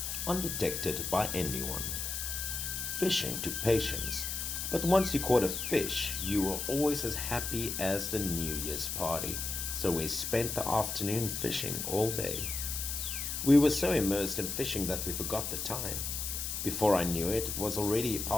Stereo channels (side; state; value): left; noise; hiss, 3 dB below the sound